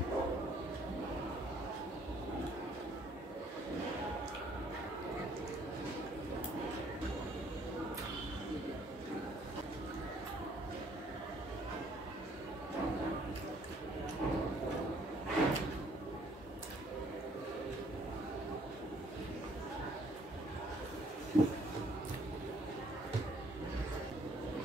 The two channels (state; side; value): normal; both; correlation 0.63